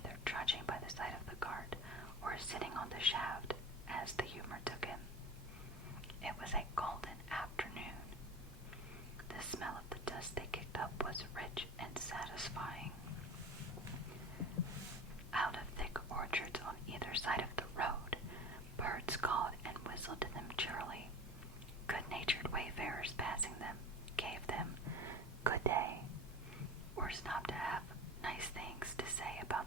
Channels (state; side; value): normal; both; correlation 0.33